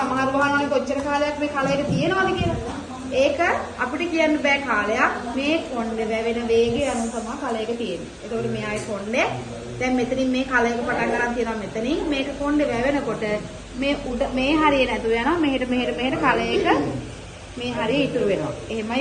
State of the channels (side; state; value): both; identical; correlation 1.00